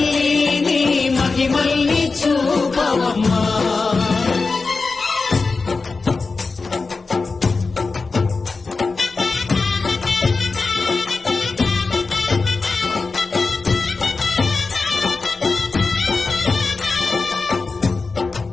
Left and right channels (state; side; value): quieter; right; 4.1 dB